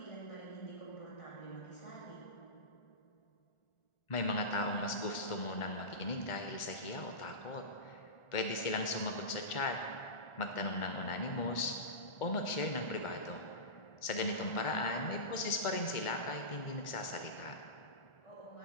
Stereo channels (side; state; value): right; late; 1.4 ms